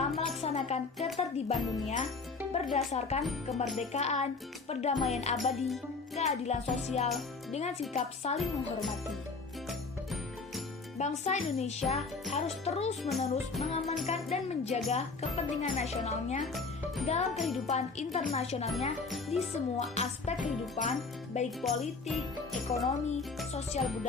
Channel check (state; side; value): quieter; right; 4.2 dB